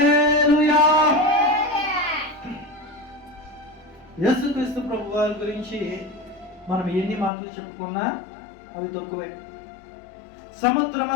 యేసుక్రీస్తు ప్రభు వారి గురించి మనం ఎన్ని మాటలు చెప్పుకున్నా అవి తక్కువే.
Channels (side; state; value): right; drops out; at 7.3 s